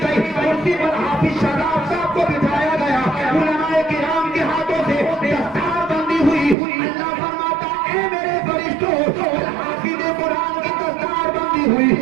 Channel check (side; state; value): left; drops out; at 6.6 s